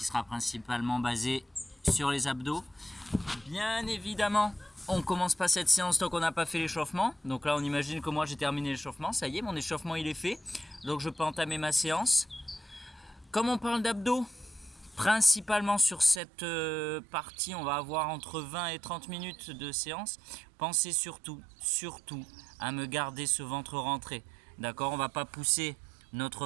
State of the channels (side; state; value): left; drops out; at 16.2 s